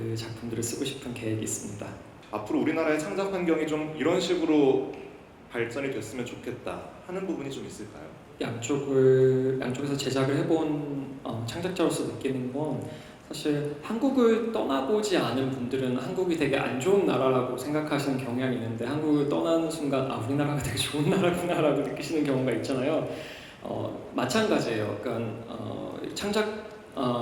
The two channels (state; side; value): identical; both; correlation 1.00